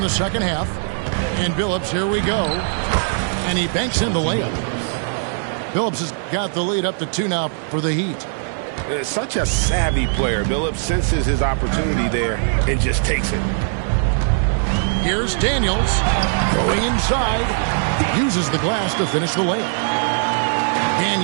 the second half. And Billups, here we go. And he banks in the layup. Billups has got the lead up to 2 now for the Heat. Such a savvy player. Billups senses his opportunity there and just takes it. Here's Daniels going inside. Uses the glass to finish the layup.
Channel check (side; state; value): left; silent; digital silence